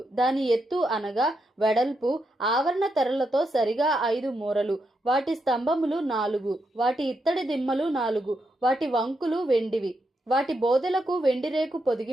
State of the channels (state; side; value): normal; both; correlation 0.82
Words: దాని ఎత్తు అనగా వెడల్పు ఆవరణ తెరలతో సరిగా 5 మూరలు. వాటి స్తంభములు 4, వాటి ఇత్తడి దిమ్మలు 4. వాటి వంకులు వెండివి. వాటి బోదెలకు వెండి రేకు